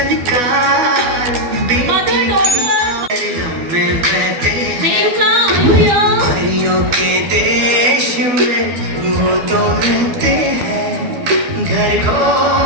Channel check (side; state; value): left; late; 12 ms